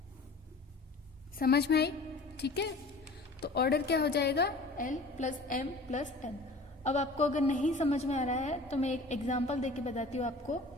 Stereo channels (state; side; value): quieter; right; 3.0 dB